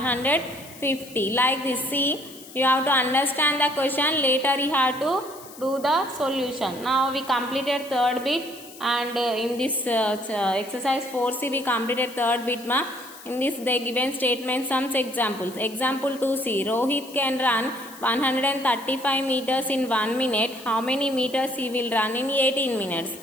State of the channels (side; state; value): left; noise; hiss, 18 dB below the sound